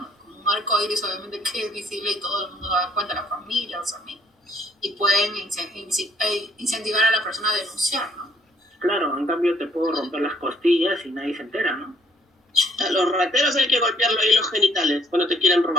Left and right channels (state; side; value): normal; both; correlation 0.65